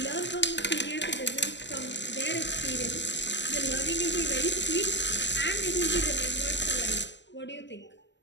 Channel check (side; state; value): right; late; 0.52 ms